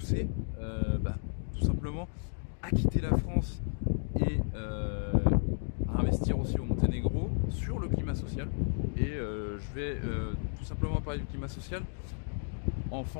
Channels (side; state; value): right; silent; digital silence